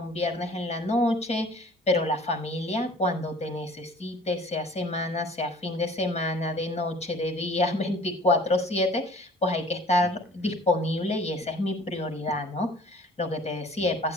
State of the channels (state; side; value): normal; both; correlation 0.49